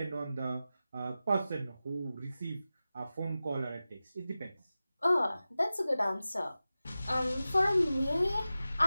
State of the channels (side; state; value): both; inverted; correlation -0.95